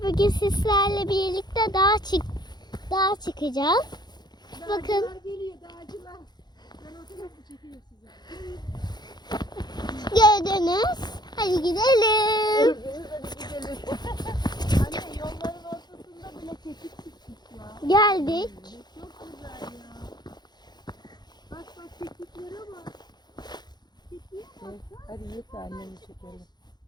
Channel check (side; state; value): right; late; 0.21 ms